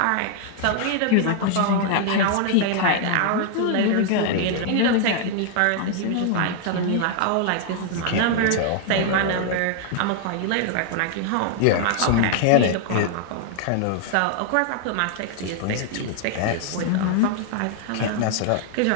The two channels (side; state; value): both; different; correlation 0.00